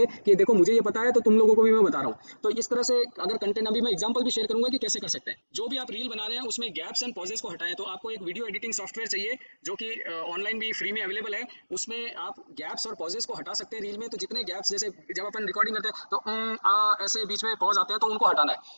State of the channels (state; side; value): inverted; both; correlation -1.00